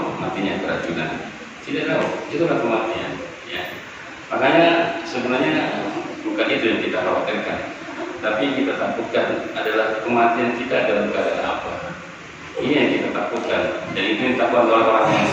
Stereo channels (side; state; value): both; identical; correlation 1.00